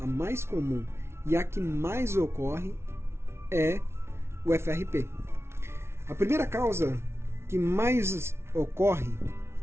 e a que mais ocorre é o FRP. A primeira causa que mais ocorre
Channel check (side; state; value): left; late; 0.12 ms